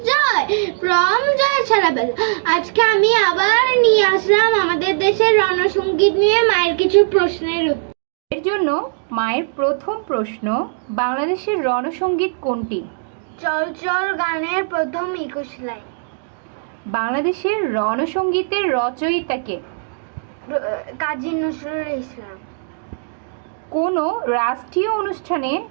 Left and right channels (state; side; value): silent; left; digital silence